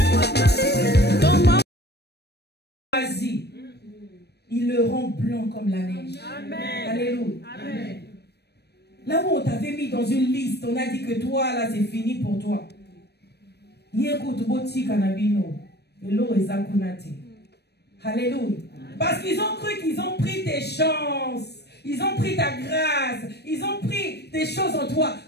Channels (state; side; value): late; right; 0.48 ms